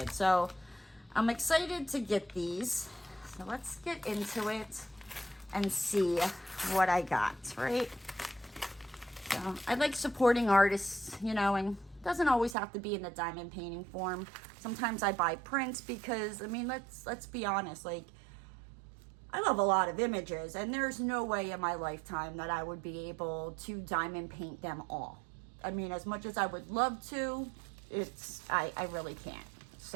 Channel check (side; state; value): left; drops out; at 12.6 s